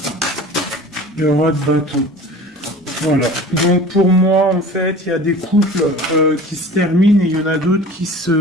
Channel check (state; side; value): normal; both; correlation 0.40